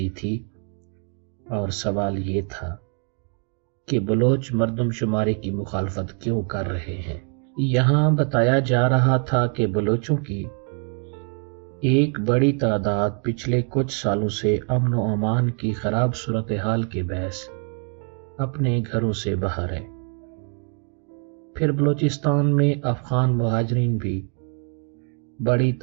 تھی، اور سوال یہ تھا کہ بلوچ مردم شماری کی مخالفت کیوں کر رہے ہیں۔ یہاں بتایا جا رہا تھا کہ بلوچوں کی ایک بڑی تعداد پچھلے کچھ سالوں سے امن و امان کی خراب صورتحال کے باعث اپنے گھروں سے باہر ہے۔ پھر بلوچستان میں افغان مہاجرین بھی بڑی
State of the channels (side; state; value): left; quieter; 39.4 dB